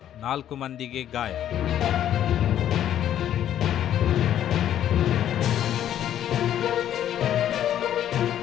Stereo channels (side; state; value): right; quieter; 10.9 dB